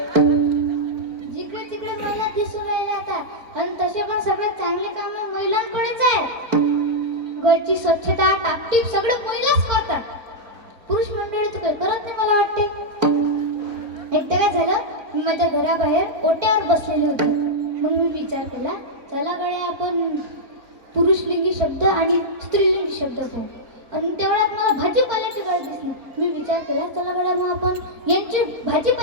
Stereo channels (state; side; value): late; left; 3.7 ms